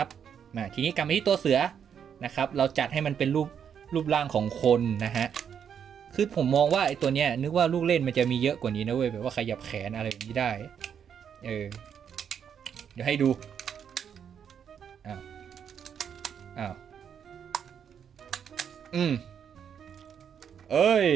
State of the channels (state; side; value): quieter; left; 8.0 dB